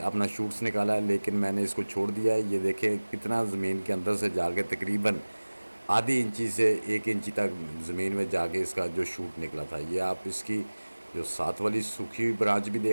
अपना शूट्स निकाला है, लेकिन मैंने इसको छोड़ दिया है। ये देखें कितना ज़मीन के अंदर से जाके तकरीबन आधी इंची से 1 इंची तक ज़मीन में जाके इसका जो शूट निकला था। ये आप इसकी जो साथ वाली सूखी हुई ब्रांच भी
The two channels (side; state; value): both; inverted; correlation -1.00